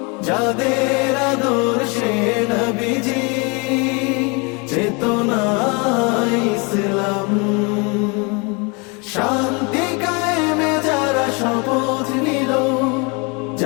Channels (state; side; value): quieter; right; 30.0 dB